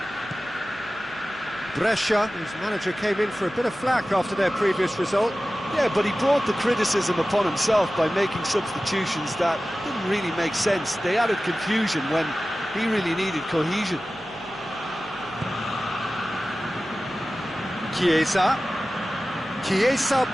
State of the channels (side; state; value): right; noise; hum, 28 dB below the sound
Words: Brescia, whose manager came in for a bit of flack after their previous result. Yeah, but he brought the criticism upon himself by making substitutions that didn't really make sense. They added confusion when he really needed cohesion. Chiesa. Chiesa